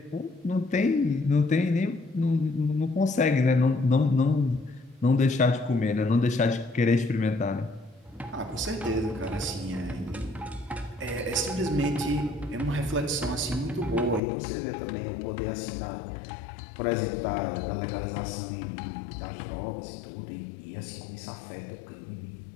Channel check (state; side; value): drops out; right; at 14.2 s